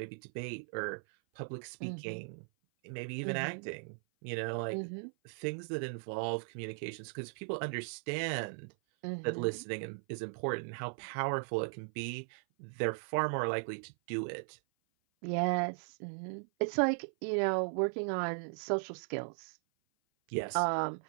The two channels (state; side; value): silent; left; 53 dB below the other